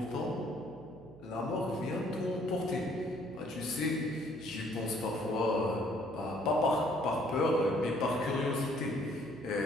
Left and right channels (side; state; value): right; noise; hum, 20 dB below the sound